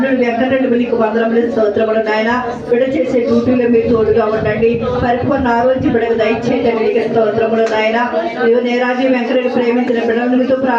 వెంకటరెడ్డి మీకు వందనములు స్తోత్రములు నాయన. బిడ్డ చేసే డ్యూటీలో మీరు తోడుగా ఉండండి. పరిపూర్ణ ఆరోగ్య బిడ్డకు దయచేయండి మీకు స్తోత్రములు నాయన. నీరాజు వెంకటరెడ్డి ప్రేమించిన బిడ్డలు మీతో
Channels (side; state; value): both; identical; correlation 1.00